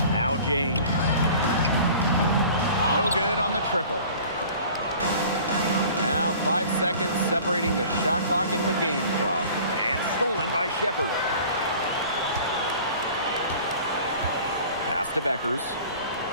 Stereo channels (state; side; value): inverted; both; correlation -0.45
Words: Now James. No good on the triple. Now 5 seconds separating the shot clock and the game clock. And stolen by Shepard. Pass to Beckers.